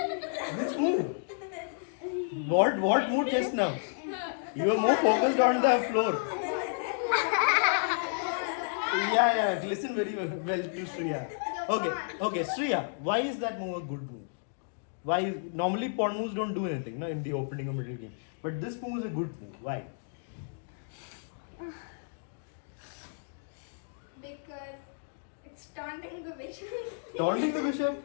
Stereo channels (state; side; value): silent; right; digital silence